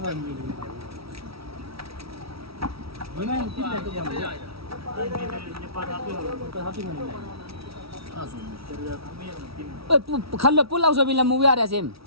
खल्लो पुल आउँछ बिना मुभी आएर सेम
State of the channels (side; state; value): left; late; 0.76 ms